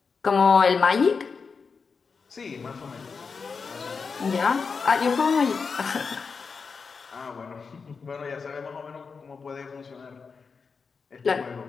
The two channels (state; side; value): quieter; right; 5.2 dB